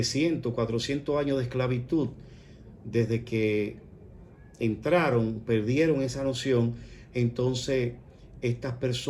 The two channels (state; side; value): identical; both; correlation 1.00